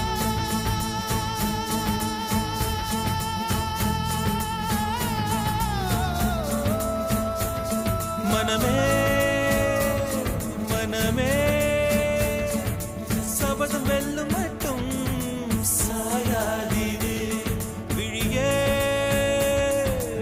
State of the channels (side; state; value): both; identical; correlation 1.00